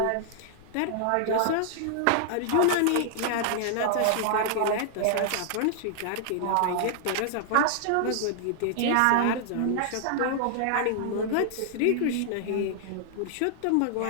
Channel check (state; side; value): different; both; correlation -0.01